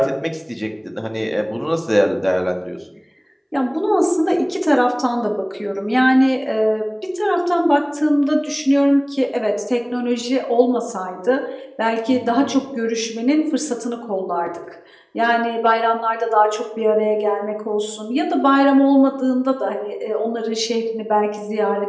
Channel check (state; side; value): identical; both; correlation 1.00